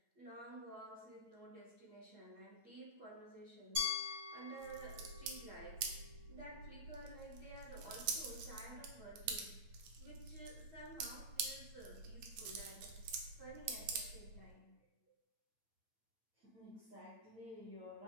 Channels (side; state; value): left; late; 9.0 ms